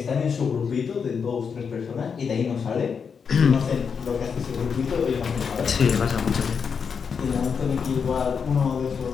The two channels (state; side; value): quieter; right; 6.2 dB